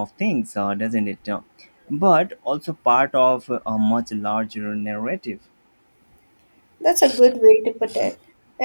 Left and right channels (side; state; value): both; inverted; correlation -1.00